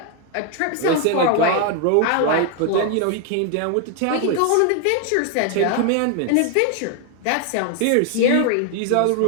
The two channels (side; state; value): both; different; correlation 0.01